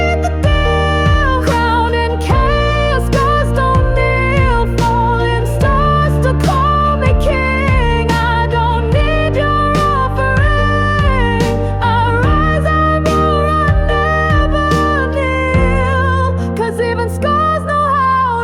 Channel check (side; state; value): both; identical; correlation 1.00